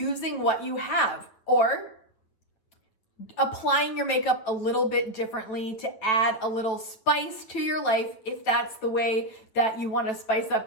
what you have, or applying your makeup a little bit differently to add a little spice to your life if that's the way that you want to spice up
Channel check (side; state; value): right; late; 9.1 ms